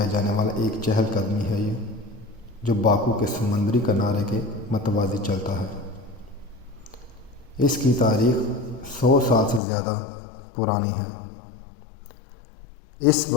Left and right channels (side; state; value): right; drops out; at 9.6 s